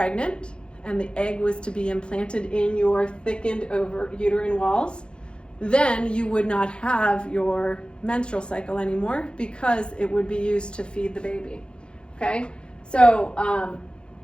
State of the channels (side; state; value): right; late; 0.054 ms